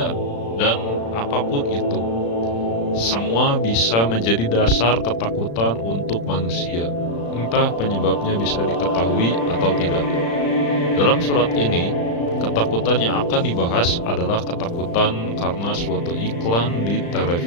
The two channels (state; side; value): late; right; 35 ms